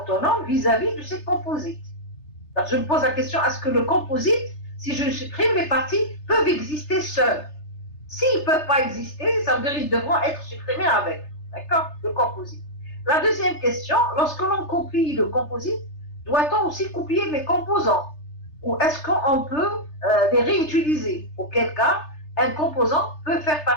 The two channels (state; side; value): late; right; 3.3 ms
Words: vis-à-vis de ces composites. Alors, je me pose la question, est-ce que le composite, si je supprime les parties, peuvent exister seuls? S'ils ne peuvent pas exister, ça veut dire qu'ils devront être supprimés avec, d'accord, le composite. La deuxième question, lorsque l'on copie le composite, doit-on aussi copier les composants? Ou est-ce qu'on peut les réutiliser? Auquel cas, un composant peut faire